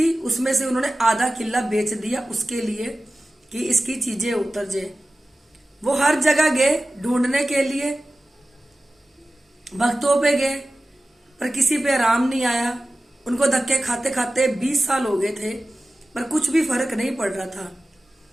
उसमें से उन्होंने आधा किला बेच दिया उसके लिए कि इसकी चीजें उतर जाए। वो हर जगह गए ढूंढने के लिए, भक्तों पे गए पर किसी पे आराम नहीं आया। उनको धक्के खाते खाते 20 साल हो गए थे पर कुछ भी फर्क नहीं पड़ रहा था।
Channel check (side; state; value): both; normal; correlation 0.96